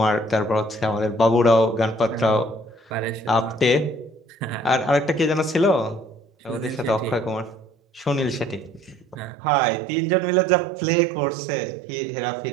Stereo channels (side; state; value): left; drops out; at 9.3 s